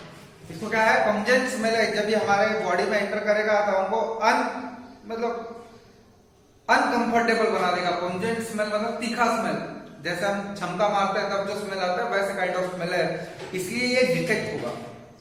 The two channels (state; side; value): identical; both; correlation 1.00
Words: इसको क्या है, पंजेंट स्मेल है। जब ये हमारे बॉडी में एंटर करेगा तो हमको मतलब अनकंफर्टेबल बना देगा। पंजेंट स्मेल मतलब तीखा स्मेल, जैसे हम क्षमता मारते हैं तब जो स्मेल आता है वैसे काइंड ऑफ स्मेल है, इसलिए ये डिटेक्ट होगा।